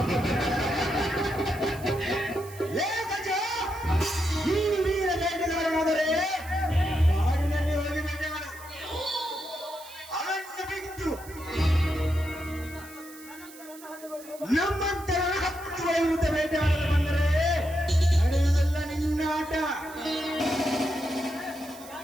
ಲೇ ಗಜ, ನೀನು ವೀರ ಬೇಟೆಗಾರನಾದರೆ ಕಾಡಿನಲ್ಲಿ ಹೋಗಿ ಬೇಟೆ ಮಾಡು. ಅರಣ್ಯ ಬಿಟ್ಟು ನಮ್ಮಂತರ 10 ವಿರುದ್ಧ ಬೇಟೆ ಮಾಡಲು ಬಂದರೆ ನಡೆಯುವುದಲ್ಲ ನಿನ್ನ ಆಟ.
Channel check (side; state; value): right; noise; hiss, 19 dB below the sound